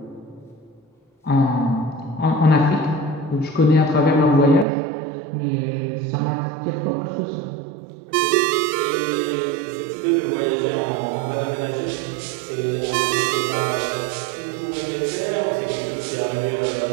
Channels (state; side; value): drops out; left; at 4.7 s